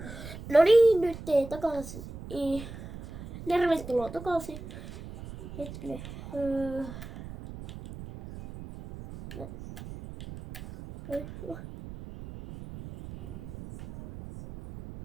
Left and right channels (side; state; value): right; noise; rumble, 12 dB below the sound